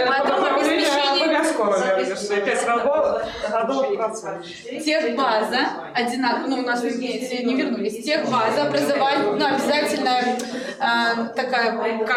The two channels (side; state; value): both; identical; correlation 1.00